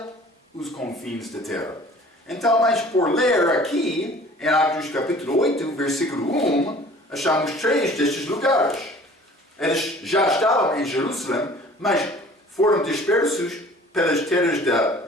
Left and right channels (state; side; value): normal; both; correlation 0.49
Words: os confins da terra. Então, mas por ler aqui, em Atos capítulo 8, versículo 1, achamos 3 destes lugares. Eles já estavam em Jerusalém, mas foram dispersos pelas terras da